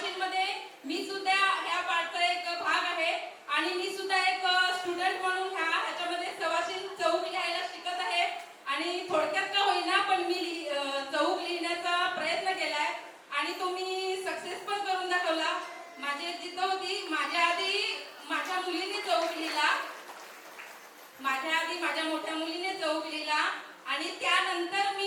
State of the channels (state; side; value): identical; both; correlation 1.00